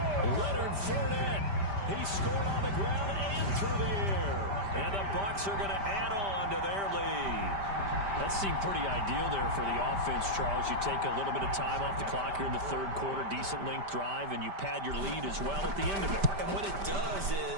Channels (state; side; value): late; left; 5.1 ms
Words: Leonard Fournette. He scored on the ground and through the air. And the Bucs are going to add on to their lead. That seemed pretty ideal there for the offense, Charles. You take a little bit of time off the clock here in the third quarter, decent length drive, and you pad your lead as well at the end of it. And what it does